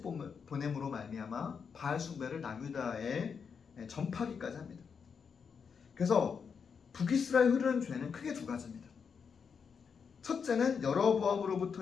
보냄으로 말미암아 바알 숭배를 남유다에 전파하기까지 합니다. 그래서 북이스라엘 흐르는 죄는 크게 두 가지입니다. 첫째는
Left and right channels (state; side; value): quieter; right; 6.2 dB